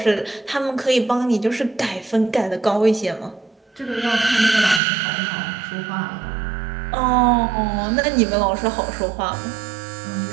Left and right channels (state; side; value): drops out; left; at 4.8 s